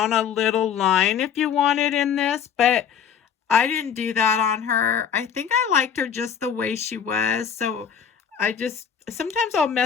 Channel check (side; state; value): right; quieter; 7.8 dB